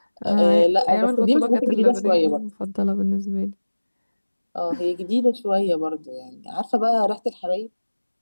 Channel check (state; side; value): inverted; both; correlation -1.00